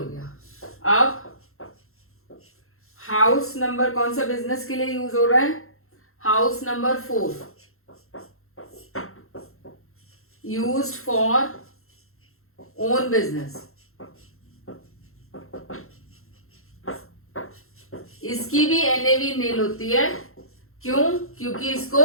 गया। अब हाउस नंबर कौन सा बिजनेस के लिए यूज हो रहा है, house number 4 used for own business. इसकी भी एनएवी नील होती है, क्यों? क्योंकि इसको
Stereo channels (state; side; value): late; right; 0.62 ms